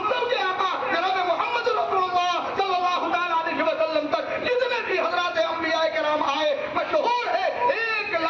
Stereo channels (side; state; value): both; identical; correlation 1.00